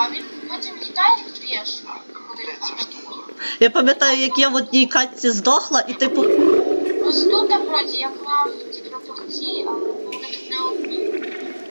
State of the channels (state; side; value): inverted; both; correlation -1.00